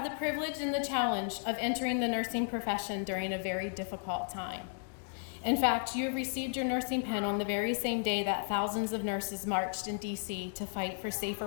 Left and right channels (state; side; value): silent; right; 55 dB below the other